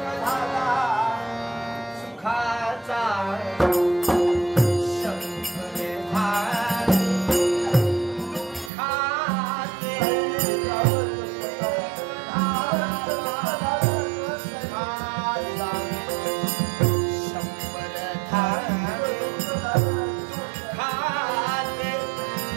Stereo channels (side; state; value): left; drops out; at 8.7 s